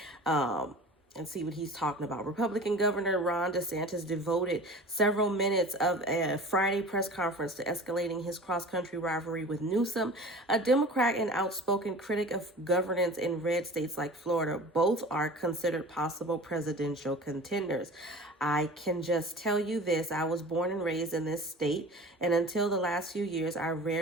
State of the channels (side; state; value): both; normal; correlation 0.40